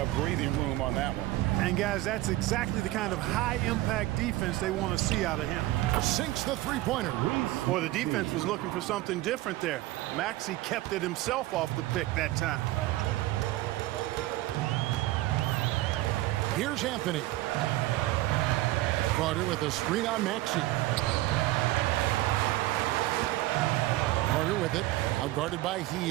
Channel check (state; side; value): quieter; left; 17.1 dB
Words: breathing room on that one. And guys, that's exactly the kind of high-impact defense they want to see out of him. Sinks the three-pointer. Boy, the defense was looking for something different there. Maxey kept it himself off the pick that time. Here's Anthony. Carter with a screen on Maxey. Carter with it. Outguarded by